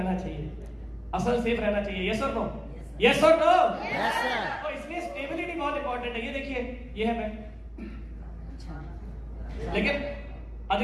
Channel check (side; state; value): both; identical; correlation 1.00